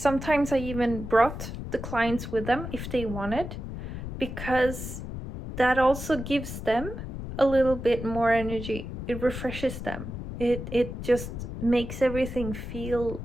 I even brought the clients with them if they wanted, because that also gives them a little bit more energy. It refreshes them. It just makes everything feel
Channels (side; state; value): left; noise; rumble, 7 dB below the sound